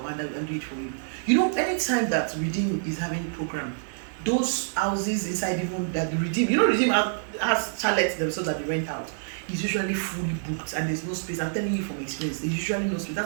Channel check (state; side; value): silent; left; digital silence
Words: will do it for you. You know, anytime that Redeem is having a program, those houses inside even that the Redeem, Redeem has chalets themselves that they rent out. It's usually fully booked and there's no space. I'm telling you from experience, there's usually no space.